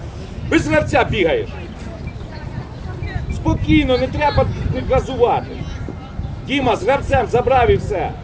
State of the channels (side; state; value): both; identical; correlation 1.00